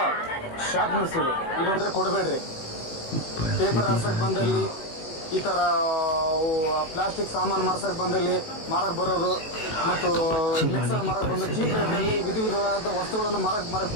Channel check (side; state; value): right; late; 19 ms